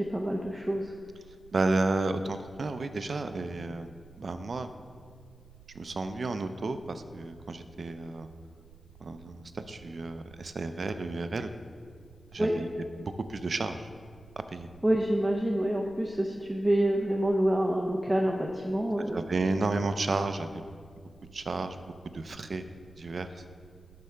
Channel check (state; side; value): noise; right; rumble, 23 dB below the sound